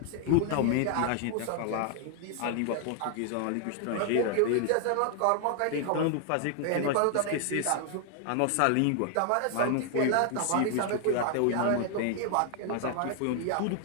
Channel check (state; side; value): different; both; correlation 0.00